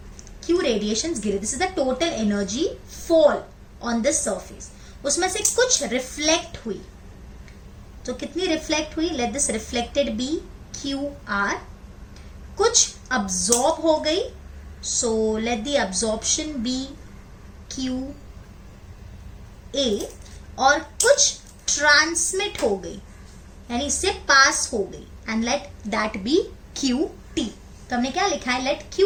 Q रेडिएशंस गिरे, this is the total energy fall on this surface. उसमें से कुछ रिफ्लेक्ट हुई, तो कितनी रिफ्लेक्ट हुई? Let this reflected be QR। कुछ अब्सॉर्ब हो गई, so let the absorption be QA। और कुछ ट्रांसमिट हो गई, यानी इससे पास हो गई, and let that be QT। तो हमने क्या लिखा है? Let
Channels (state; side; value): identical; both; correlation 1.00